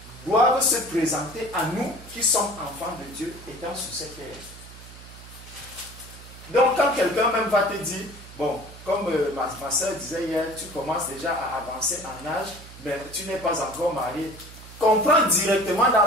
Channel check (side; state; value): right; noise; hum, 17 dB below the sound